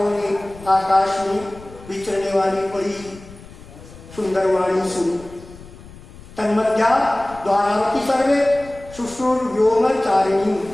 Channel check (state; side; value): noise; left; rumble, 19 dB below the sound